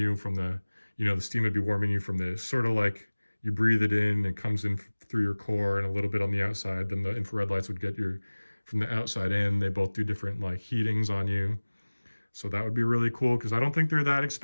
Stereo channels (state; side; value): inverted; both; correlation -1.00